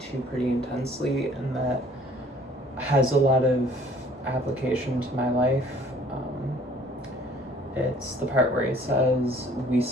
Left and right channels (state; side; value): normal; both; correlation 0.55